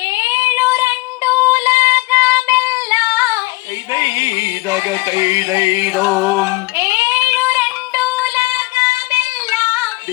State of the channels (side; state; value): right; quieter; 22.7 dB